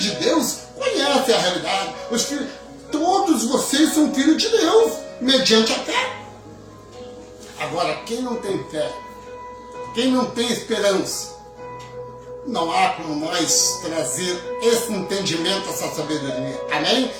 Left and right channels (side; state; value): both; identical; correlation 1.00